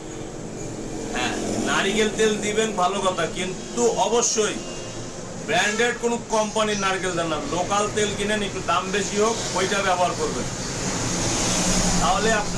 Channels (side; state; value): both; identical; correlation 1.00